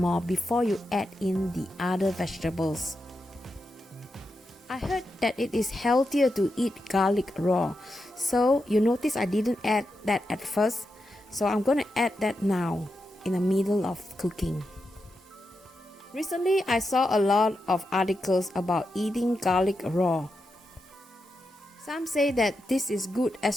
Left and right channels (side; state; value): both; normal; correlation 0.87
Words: before you add in the other vegetables. I heard that it is healthier to eat garlic raw, so you notice I didn't add that at first. So I'm going to add that now in the middle of cooking. Recently, I saw a lot of articles about eating garlic raw. Some say that this is good,